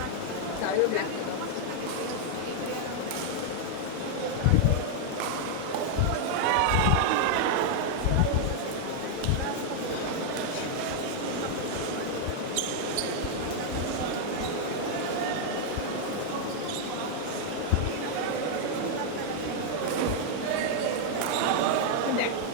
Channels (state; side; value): different; both; correlation 0.00